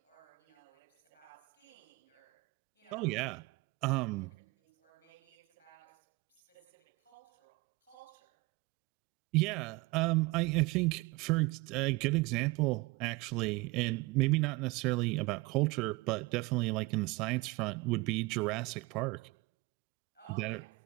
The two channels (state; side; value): quieter; left; 23.4 dB